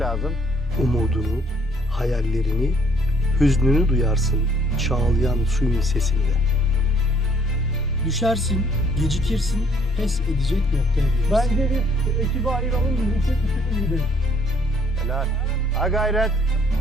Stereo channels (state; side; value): normal; both; correlation 0.62